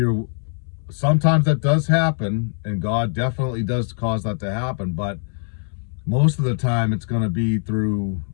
sometimes that does happen, and God definitely does cause that to happen. But most of the time it's going to be through,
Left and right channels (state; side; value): silent; right; 63 dB below the other